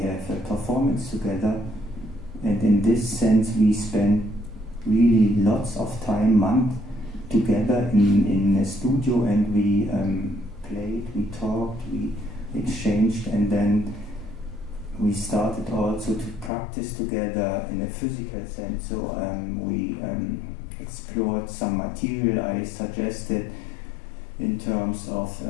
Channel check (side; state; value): right; drops out; at 16.5 s